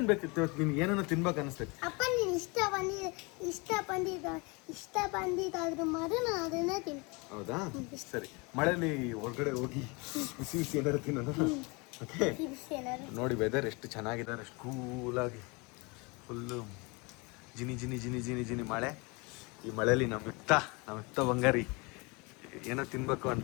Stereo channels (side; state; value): right; quieter; 28.3 dB